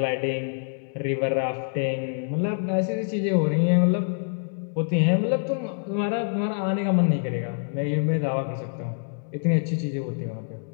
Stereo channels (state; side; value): silent; right; digital silence